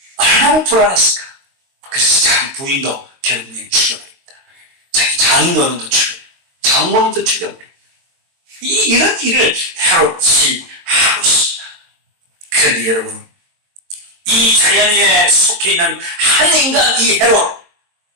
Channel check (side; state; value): left; late; 22 ms